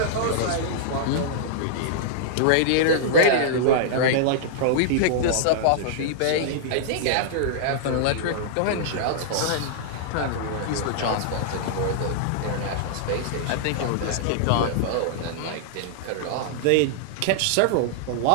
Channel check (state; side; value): different; both; correlation -0.02